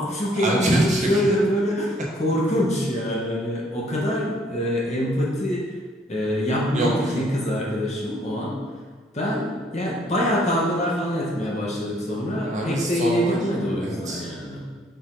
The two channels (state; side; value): normal; both; correlation 0.64